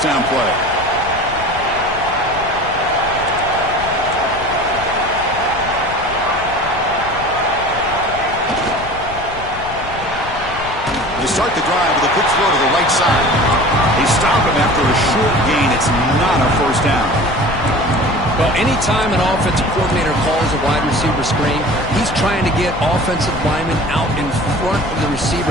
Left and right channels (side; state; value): left; noise; rumble, 13 dB below the sound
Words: down play. They start the drive with a quick throw to the right side. They stop him after a short gain. It's not a first down. Well, anytime an offensive coordinator calls a wide receiver screen, he's trying to get offensive linemen out in front of the